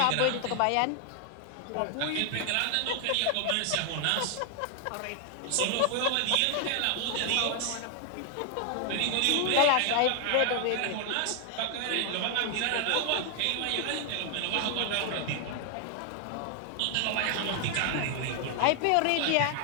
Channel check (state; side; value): different; both; correlation 0.00